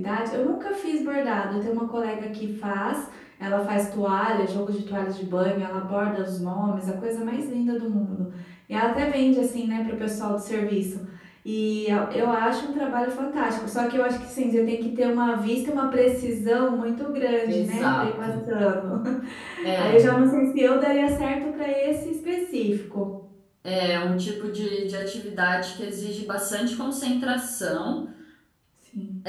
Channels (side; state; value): both; identical; correlation 1.00